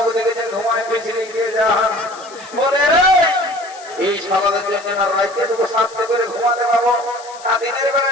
দেখে যে ঘুমায় পিছনে গিয়ে যান বলে রে এই সকালের জন্য না রাইতে তোকে শান্তি করে ঘুমাতে পাবো না দিনের বেলা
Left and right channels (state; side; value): noise; left; hiss, 20 dB below the sound